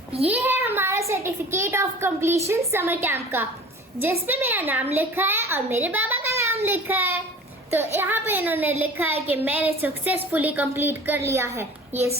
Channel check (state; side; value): normal; both; correlation 0.42